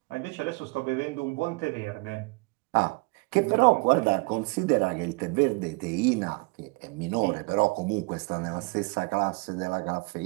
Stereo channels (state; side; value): quieter; left; 27.8 dB